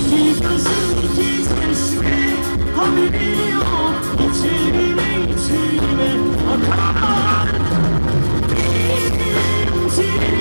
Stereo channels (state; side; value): inverted; both; correlation -1.00